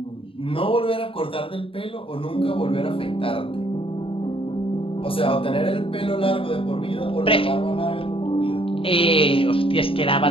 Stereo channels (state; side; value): late; right; 0.26 ms